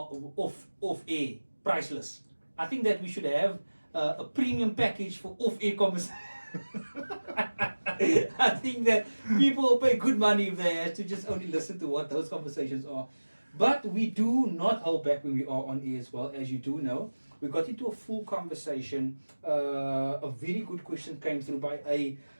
air, priceless. I think that we should have a premium package for off air conversations. I think that people will pay good money if they have to just only listen to what those conversations are. But we do not hold back when we are on air as well, as you do know. We got into a full conversation. A very good question came through by a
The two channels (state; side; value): inverted; both; correlation -1.00